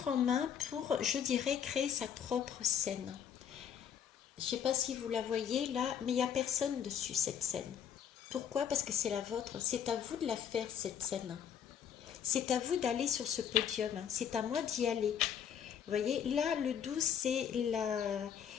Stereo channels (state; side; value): quieter; right; 8.5 dB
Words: en main pour, je dirais, créer sa propre scène. Je ne sais pas si vous la voyez là, mais il n'y a personne dessus cette scène. Pourquoi? Parce que c'est la vôtre. C'est à vous de la faire cette scène. C'est à vous d'aller sur ce podium, hein. C'est à moi d'y aller. Vous voyez, là, le 12, c'est